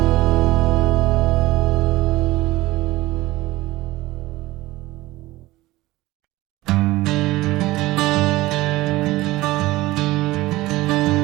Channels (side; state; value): left; quieter; 18.6 dB